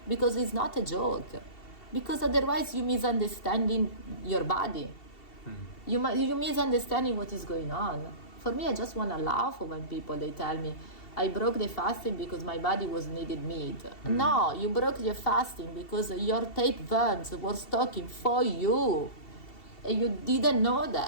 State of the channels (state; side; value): late; right; 2.7 ms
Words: because it's not a joke. Because otherwise you misunderstanding your body. You misunderstanding what is going on. For me, I just want to laugh when people, they tell me, I broke the fasting because my body was needed meat. No, you broke your fasting because your tapeworms were stalking for you. And you didn't know